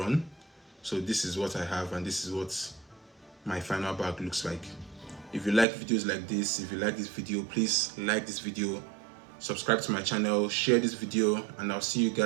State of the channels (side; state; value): left; drops out; at 5.7 s